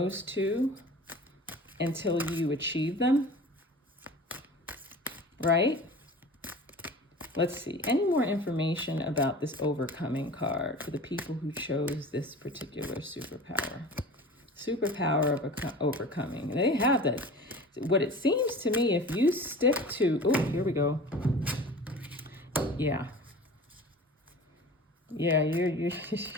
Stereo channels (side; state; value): both; normal; correlation 0.39